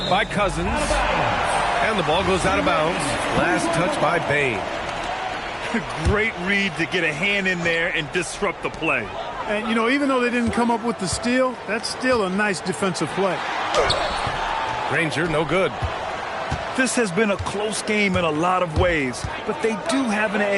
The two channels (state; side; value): identical; both; correlation 1.00